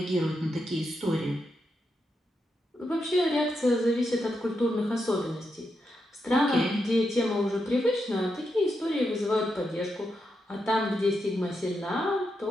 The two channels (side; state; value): both; normal; correlation 0.84